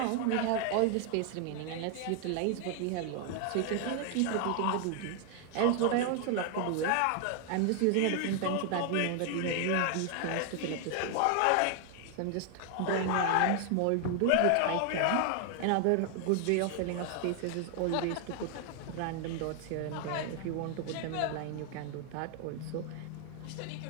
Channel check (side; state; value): both; different; correlation 0.00